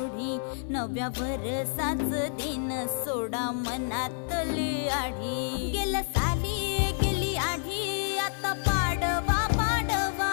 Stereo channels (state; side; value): silent; right; 59 dB below the other